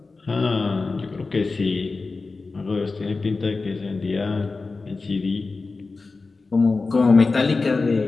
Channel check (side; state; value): right; quieter; 3.9 dB